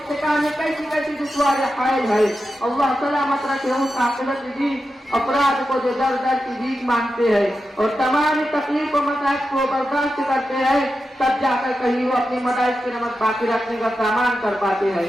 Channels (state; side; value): normal; both; correlation 0.90